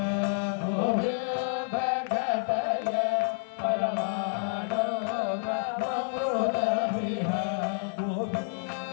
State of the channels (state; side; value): silent; right; 59 dB below the other